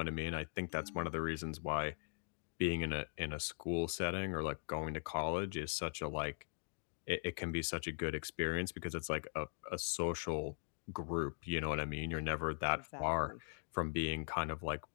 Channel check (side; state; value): right; silent; digital silence